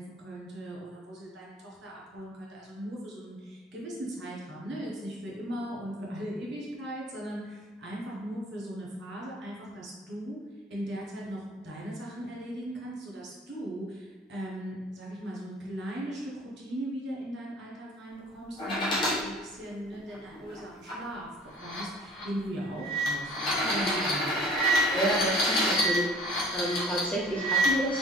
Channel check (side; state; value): both; normal; correlation 0.49